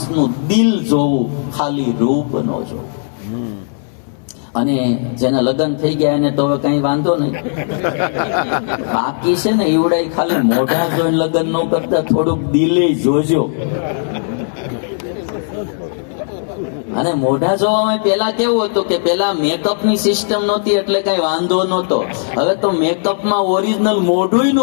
દિલ જોવું, ખાલી રૂપ નો જોવું. અને જેના લગ્ન થઈ ગયા એને તો હવે કઈ વાંધો નહીં. બાકી છે ને એવડાય ખાલી મોઢા જોઈને લગ્ન ન કરતા થોડુંક દિલે જોજો. અને મોઢા જોવામાં પેલા કેવું હતું કે પેલા મેકઅપ ની સિસ્ટમ નહોતી એટલે કઈ વાંધો નહોતો. હવે તો મેકઅપમાં ઓરિજિનલ મોઢું ન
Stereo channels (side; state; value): right; silent; digital silence